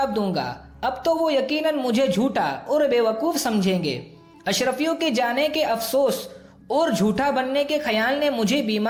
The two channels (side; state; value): both; identical; correlation 1.00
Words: دوں گا۔ اب تو وہ یقیناً مجھے جھوٹا اور بے وقوف سمجھیں گے۔ اشرفیوں کے جانے کے افسوس اور جھوٹا بننے کے خیال نے مجھے